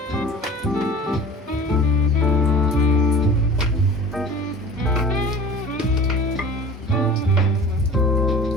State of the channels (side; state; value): both; normal; correlation 0.41